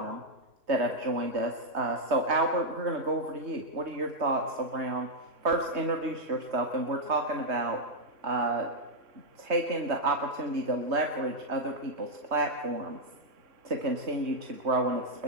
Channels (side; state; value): left; late; 3.2 ms